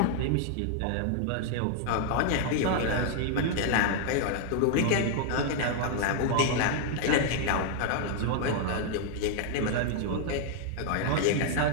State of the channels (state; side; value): different; both; correlation 0.00